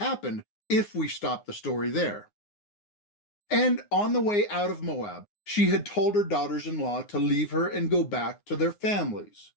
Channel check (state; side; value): late; right; 9.6 ms